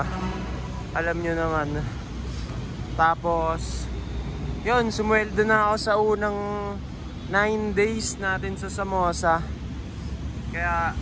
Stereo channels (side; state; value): both; identical; correlation 1.00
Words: Alam nyo naman. Tapos yun, sumweldo na ako sa unang 9 days natin sa Samosa. Kaya